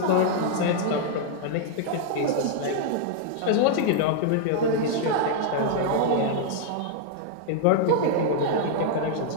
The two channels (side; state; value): both; different; correlation -0.01